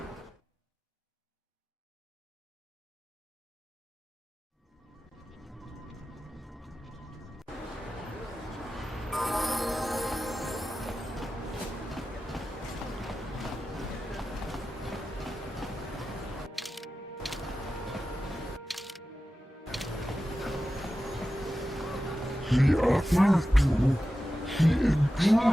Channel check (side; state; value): both; normal; correlation 0.93